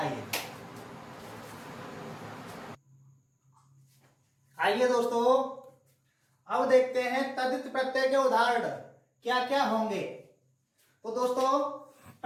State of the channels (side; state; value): both; identical; correlation 1.00